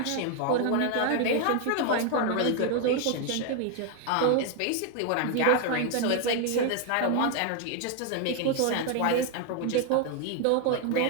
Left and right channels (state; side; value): different; both; correlation 0.01